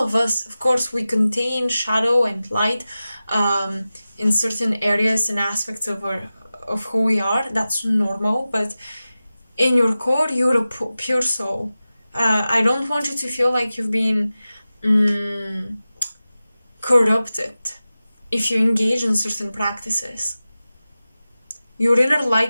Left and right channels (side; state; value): both; inverted; correlation -0.95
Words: us, of course, we contain shadow and light in certain areas and aspects of who we are. That's normal, but in your core, you're a pure soul. I don't want you to feel like you've been corrupted if you engage in certain practices. Your inner